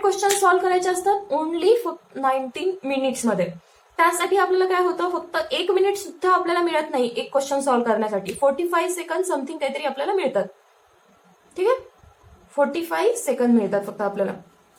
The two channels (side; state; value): both; identical; correlation 1.00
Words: क्वेश्चन सॉल्व्ह करायचे असतात ओनली 19 मिनिट्स मध्ये. त्यासाठी आपल्याला काय होतं फक्त 1 मिनिट सुद्धा आपल्याला मिळत नाही एक क्वेश्चन सॉल्व्ह करण्यासाठी. 45 सेकंड समथिंग काहीतरी आपल्याला मिळतात. ठीक आहे, 45 सेकंड मिळतात फक्त आपल्याला